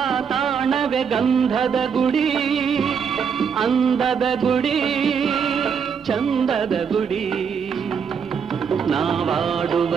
ತಾಣವೇ ಗಂಧದ ಗುಡಿ, ಅಂದದ ಗುಡಿ, ಚಂದದ ಗುಡಿ. ನಾವಾಡುವ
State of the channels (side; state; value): left; quieter; 6.7 dB